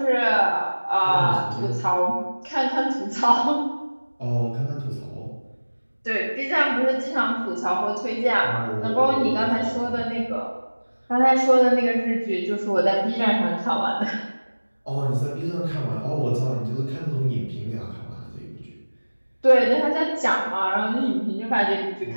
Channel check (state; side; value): inverted; both; correlation -1.00